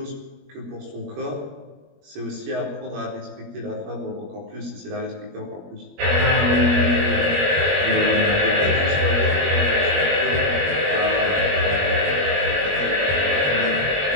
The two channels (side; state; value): left; late; 21 ms